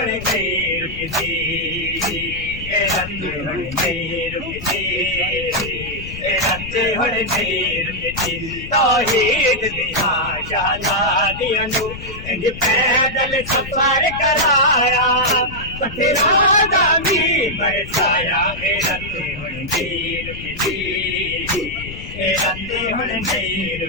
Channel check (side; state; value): left; noise; rumble, 12 dB below the sound